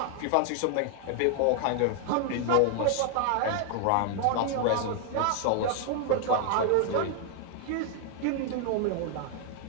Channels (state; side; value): different; both; correlation 0.00